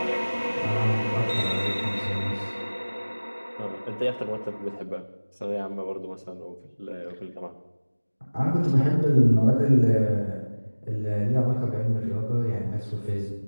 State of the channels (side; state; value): both; inverted; correlation -1.00